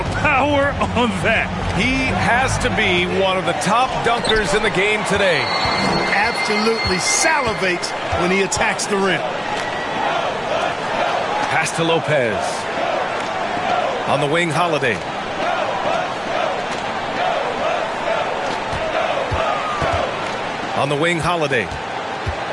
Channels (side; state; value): both; identical; correlation 1.00